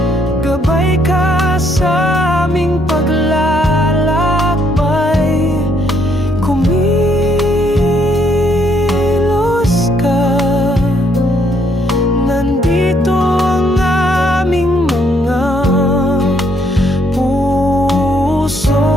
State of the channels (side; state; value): both; normal; correlation 0.71